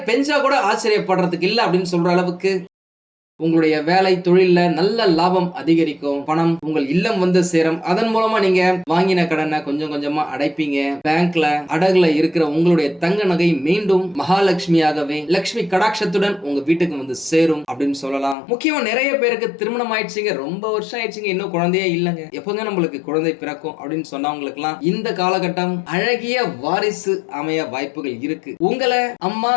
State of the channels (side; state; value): right; drops out; at 18.4 s